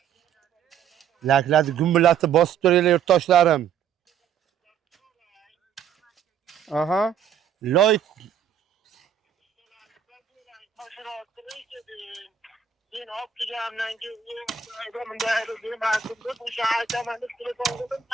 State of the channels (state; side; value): quieter; left; 7.9 dB